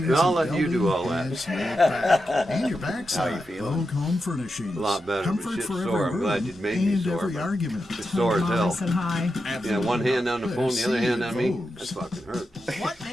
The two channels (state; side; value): normal; both; correlation 0.88